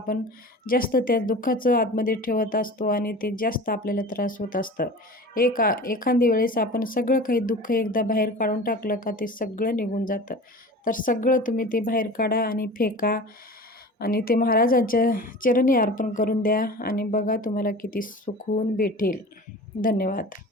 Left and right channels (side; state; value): both; normal; correlation 0.37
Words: जास्त त्या दुःखाचं आतमध्ये ठेवत असतो आणि ते जास्त आपल्याला त्रास होत असतं. एखादी वेळेस आपण सगळं काही दुःख एकदा बाहेर काढून टाकलं का ते सगळं निघून जातं. तर सगळं तुम्ही ते बाहेर काढा आणि फेका. आणि ते महाराजांच्या चरणी अर्पण करून द्या आणि बघा तुम्हाला किती सुकून भेटेल. धन्यवाद.